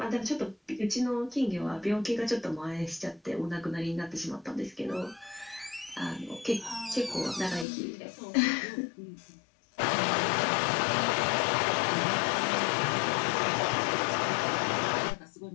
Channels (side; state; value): right; drops out; at 7.7 s